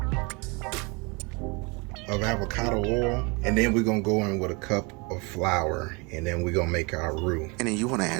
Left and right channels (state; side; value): quieter; left; 29.4 dB